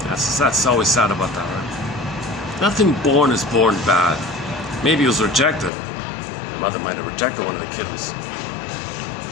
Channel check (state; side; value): drops out; right; at 5.7 s